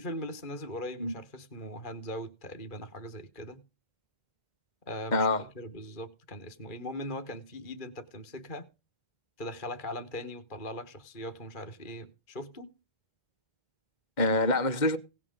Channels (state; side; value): late; right; 2.1 ms